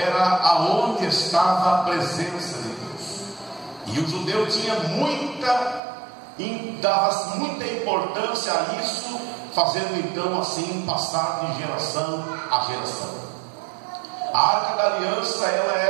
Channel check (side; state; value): left; drops out; at 5.8 s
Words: aonde estava a presença de Deus. E o judeu tinha dava muita importância a isso, fazendo então assim passar de geração a geração. A arca da aliança, ela